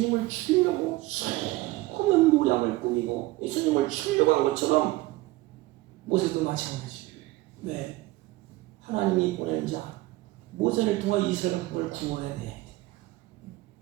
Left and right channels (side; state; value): left; quieter; 19.4 dB